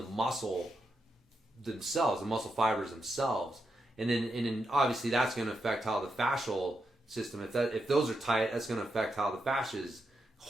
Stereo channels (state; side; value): normal; both; correlation 0.84